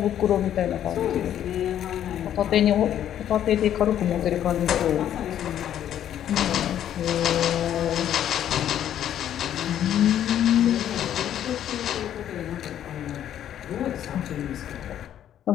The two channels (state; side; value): quieter; right; 10.7 dB